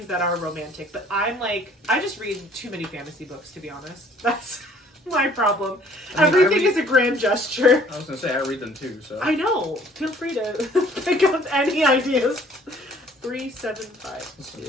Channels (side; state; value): both; normal; correlation 0.57